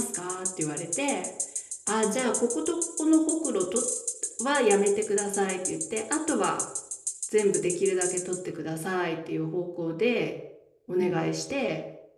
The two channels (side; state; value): both; identical; correlation 1.00